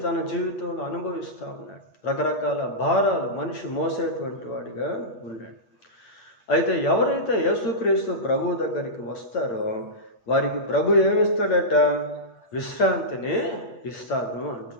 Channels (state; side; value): late; right; 8.9 ms